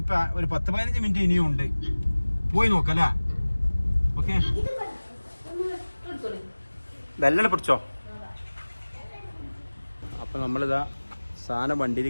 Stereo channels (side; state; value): both; inverted; correlation -1.00